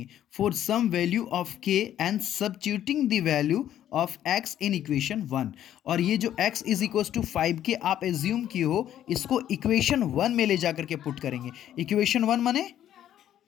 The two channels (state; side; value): quieter; right; 11.3 dB